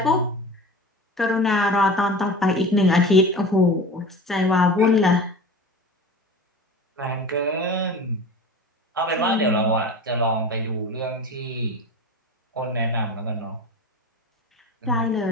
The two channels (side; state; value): both; normal; correlation 0.34